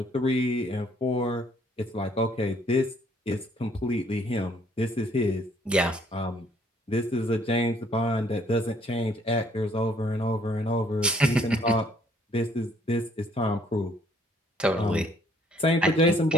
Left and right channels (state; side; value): normal; both; correlation 0.63